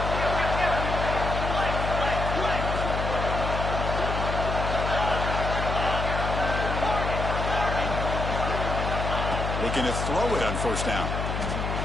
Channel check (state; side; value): noise; left; hum, 2 dB below the sound